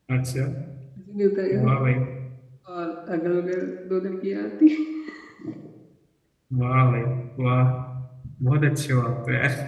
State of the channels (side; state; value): both; identical; correlation 1.00